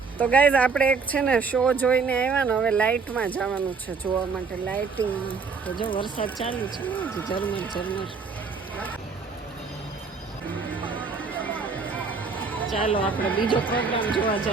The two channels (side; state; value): left; quieter; 4.9 dB